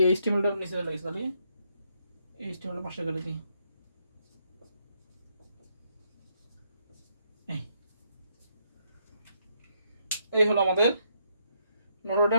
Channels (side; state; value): both; inverted; correlation -0.75